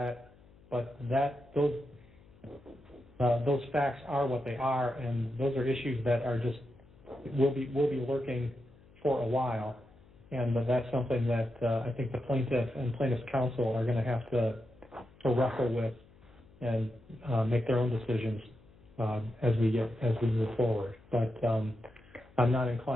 but those facts are what they are, and those are issues that are just will be lurking for a while, and that's something that I think the plaintiff and plaintiff's counsel are going to have to wrestle with and make their own decisions as we move forward. But I'm not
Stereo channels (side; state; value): left; noise; hum, 26 dB below the sound